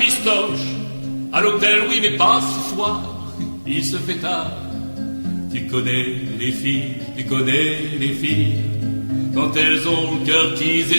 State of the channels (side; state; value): both; inverted; correlation -1.00